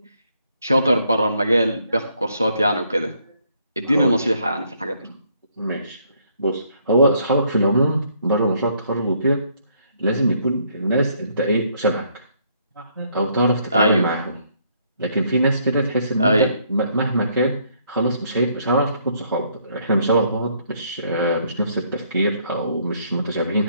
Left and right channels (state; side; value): inverted; both; correlation -0.68